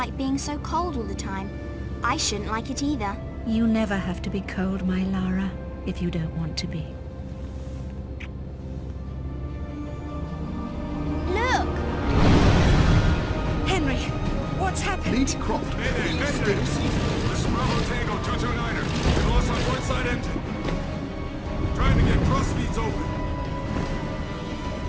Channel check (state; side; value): identical; both; correlation 1.00